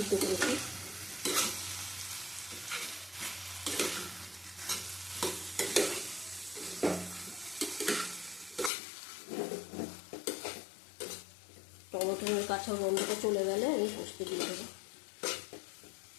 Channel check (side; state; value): right; drops out; at 8.7 s